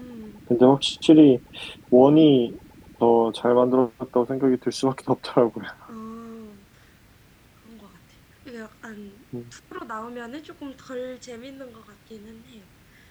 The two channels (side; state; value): both; identical; correlation 1.00